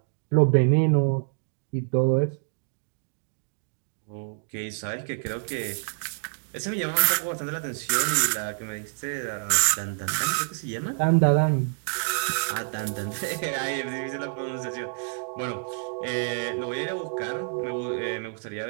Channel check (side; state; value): left; silent; digital silence